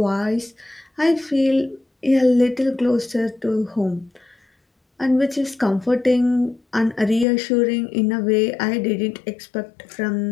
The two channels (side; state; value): right; drops out; at 7.2 s